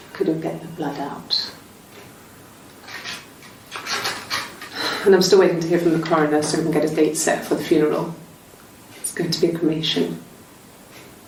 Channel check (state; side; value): identical; both; correlation 1.00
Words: Couldn't get the blood out. And I'm still waiting to hear from the coroner so we can get a date set for the funeral. It's going to be a cremation.